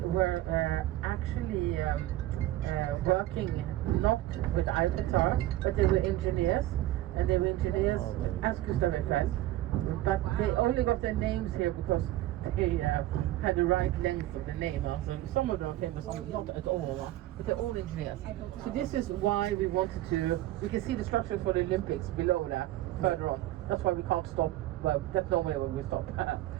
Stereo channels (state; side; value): quieter; left; 15.1 dB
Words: actually working not with the Eiffel Tower, but they were engineers, and they were engineers as Gustave Eiffel. But they only got their names here because they had the right length of the name. So some of them are famous, not at all, but they're all engineers. So this is why we wanted to. We can see the structures for the Olympics below there, further on. That's why we can't stop. Well, that's normally when we stop.